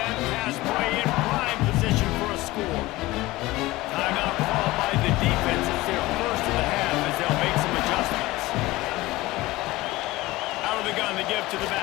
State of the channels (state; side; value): quieter; right; 19.2 dB